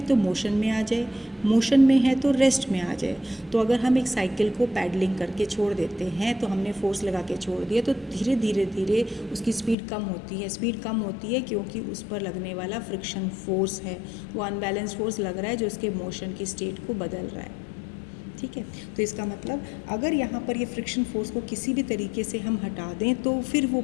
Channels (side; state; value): right; drops out; at 9.8 s